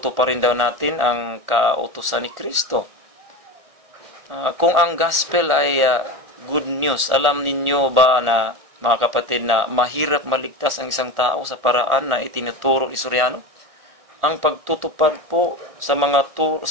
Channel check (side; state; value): left; late; 1.4 ms